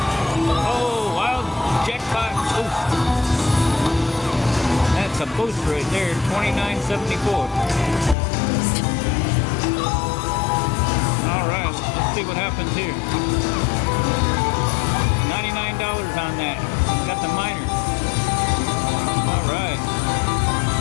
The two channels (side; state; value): right; drops out; at 8.2 s